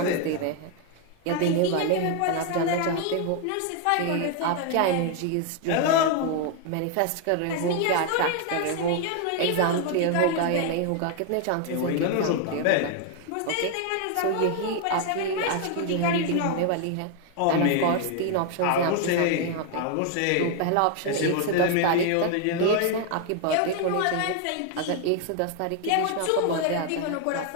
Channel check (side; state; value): both; different; correlation 0.00